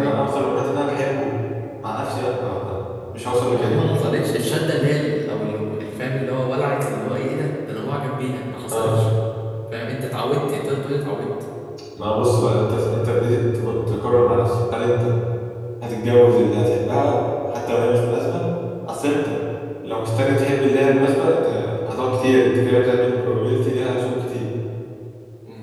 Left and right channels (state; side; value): identical; both; correlation 1.00